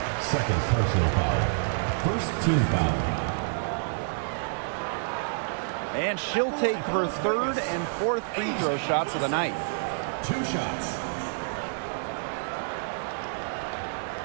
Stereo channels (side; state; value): left; silent; digital silence